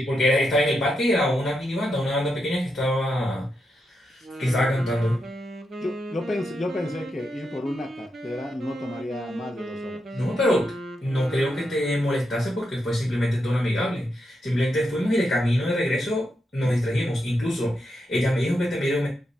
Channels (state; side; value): normal; both; correlation 0.84